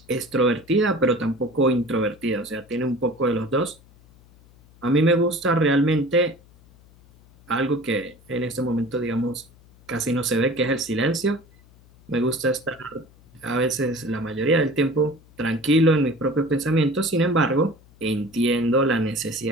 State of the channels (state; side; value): noise; left; hum, 27 dB below the sound